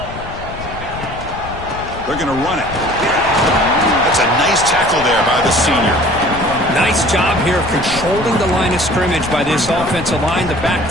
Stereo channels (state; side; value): noise; left; rumble, 12 dB below the sound